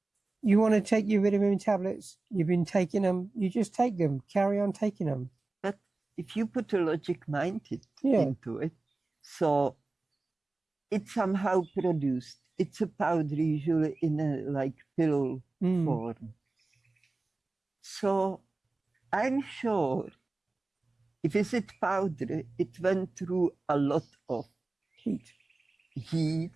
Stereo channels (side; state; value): left; quieter; 3.2 dB